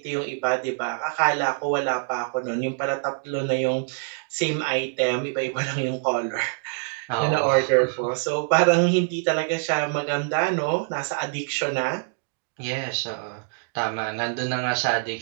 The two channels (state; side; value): silent; left; digital silence